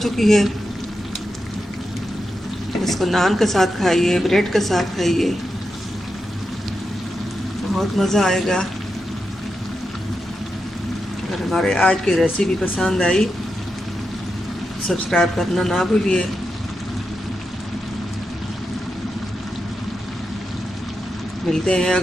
चुकी है। इसको नान के साथ खाइए, ब्रेड के साथ खाइए, बहुत मज़ा आएगा। अगर हमारे आज की रेसिपी पसंद आई, सब्सक्राइब करना ना भूलिए। मिलते हैं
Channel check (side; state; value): both; normal; correlation 0.88